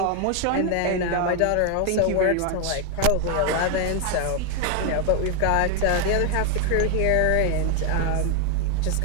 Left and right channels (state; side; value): different; both; correlation 0.00